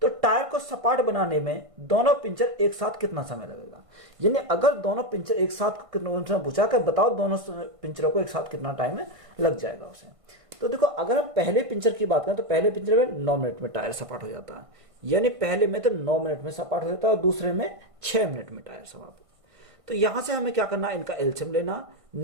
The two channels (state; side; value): late; left; 1.5 ms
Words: तो टायर को सपाट बनाने में दोनों पिंचर एक साथ कितना समय लगेगा। यानी अगर दोनों पिंचर एक साथ कितना पूछा कर बताओ, दोनों पिंचरों को एक साथ कितना टाइम लग जाएगा उसे। तो देखो अगर हम पहले पिंचर की बात करें तो पहले पिंचर में 9 मिनट में टायर सपाट हो जाता है, यानी पहले में तो 9 मिनट में सपाट हो जाता है और दूसरे में 6 मिनट में टायर सपाट। तो यहां से हमें क्या करना है, इनका एलसीएम लेना।